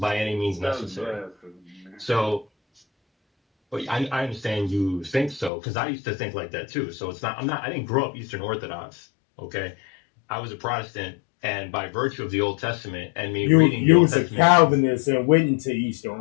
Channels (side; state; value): right; drops out; at 5.5 s